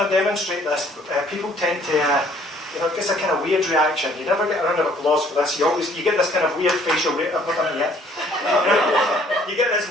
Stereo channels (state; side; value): normal; both; correlation 0.60